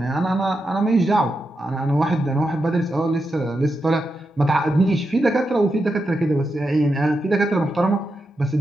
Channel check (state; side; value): normal; both; correlation 0.87